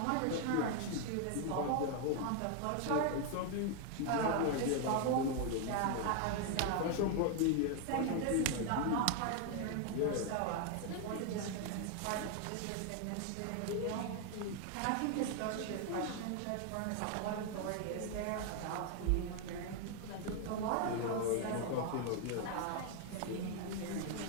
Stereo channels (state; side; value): different; both; correlation 0.00